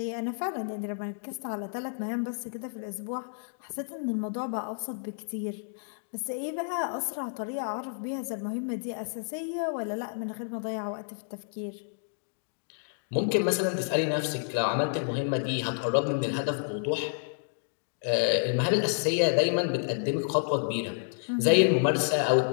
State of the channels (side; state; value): right; silent; digital silence